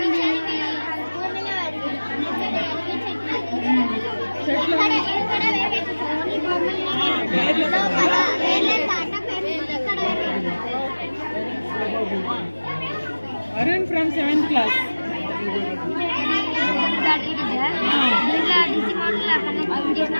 Arun from 7th class.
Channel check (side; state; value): both; inverted; correlation -1.00